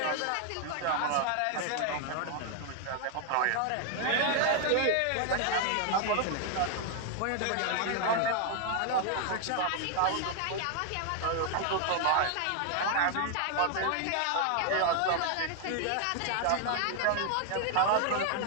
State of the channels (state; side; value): different; both; correlation 0.00